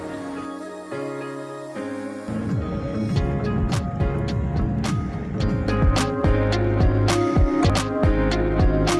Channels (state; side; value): identical; both; correlation 1.00